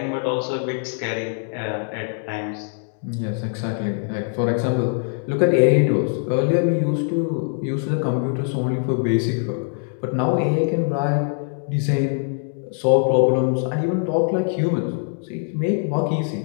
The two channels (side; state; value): right; silent; 64 dB below the other